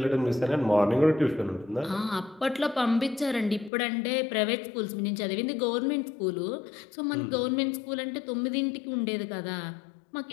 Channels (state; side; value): drops out; right; at 3.7 s